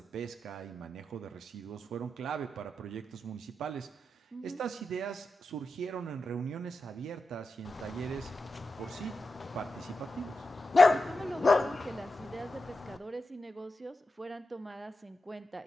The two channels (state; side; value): normal; both; correlation 0.90